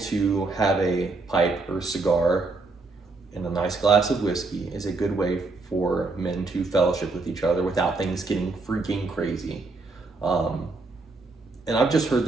have a pipe or cigar and a nice glass of whiskey is a good way for men to fellowship with each other without things getting freaking crazy. And I've just heard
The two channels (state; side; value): quieter; left; 3.6 dB